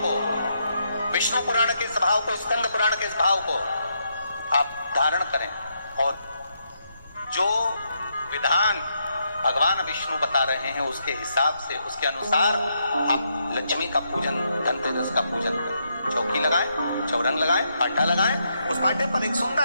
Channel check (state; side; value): inverted; both; correlation -0.78